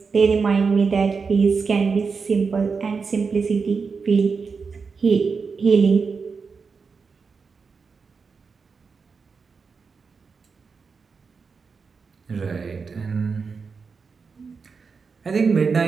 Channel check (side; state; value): left; quieter; 5.1 dB